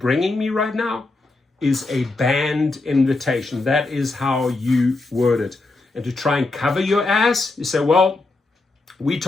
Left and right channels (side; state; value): right; quieter; 3.2 dB